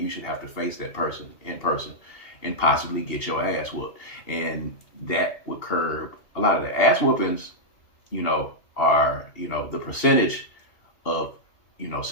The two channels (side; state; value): right; late; 2.8 ms